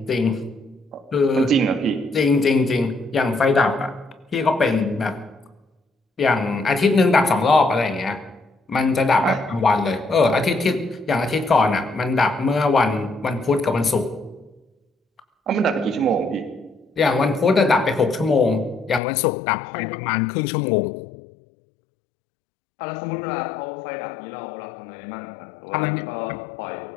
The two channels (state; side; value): drops out; right; at 19.0 s